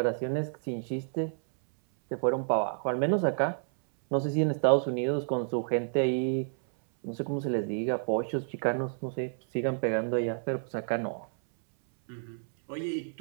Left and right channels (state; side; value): silent; left; 58 dB below the other